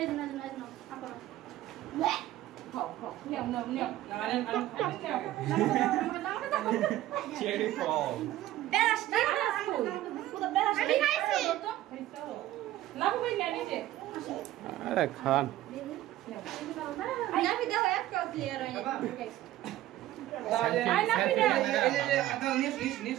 চেরি ফল আরে খান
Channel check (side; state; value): left; quieter; 14.6 dB